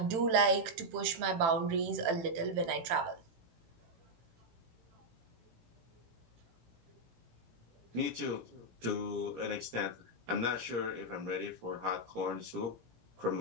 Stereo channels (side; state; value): left; late; 18 ms